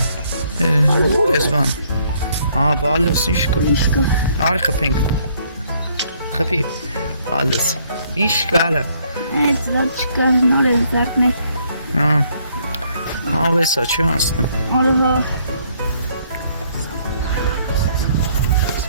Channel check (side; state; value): both; inverted; correlation -0.66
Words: Burası van. Alles işgal. İşgal. Argepink. Gefiel. Alles. İşgal. Evet, dat çıkartma oraya zaten. Ve saçı aslında. Araba.